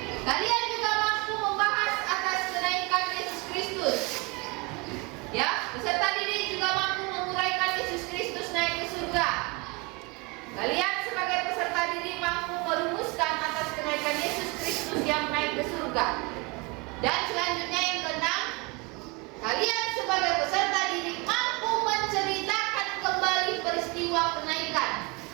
Kalian juga mampu membahas atas kenaikan Yesus Kristus. Ya, peserta didik juga mampu menguraikan Yesus Kristus naik ke surga. Kalian sebagai peserta didik mampu merumuskan atas kenaikan Yesus Kristus yang naik ke surga. Dan selanjutnya yang keenam, kalian sebagai peserta didik mampu menceritakan kembali peristiwa kenaikan.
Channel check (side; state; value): left; quieter; 26.9 dB